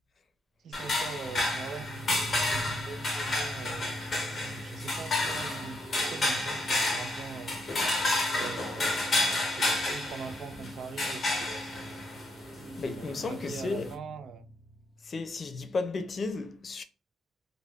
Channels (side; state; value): both; normal; correlation 0.77